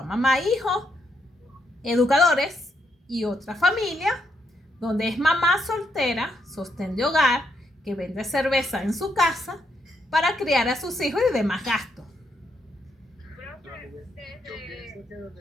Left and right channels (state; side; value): normal; both; correlation 0.78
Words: mamá, hijos, educadores, y otra familia donde es mamá soltera, sostén de hogar, que vende cerveza en su casa para criar a sus hijos y demás gastos. Yo pienso que donde